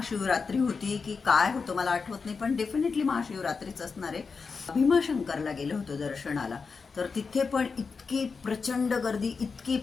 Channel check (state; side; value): quieter; right; 5.0 dB